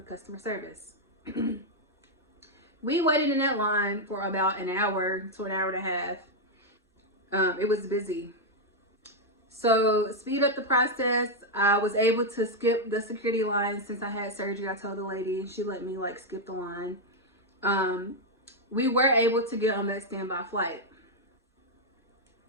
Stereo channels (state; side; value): normal; both; correlation -0.01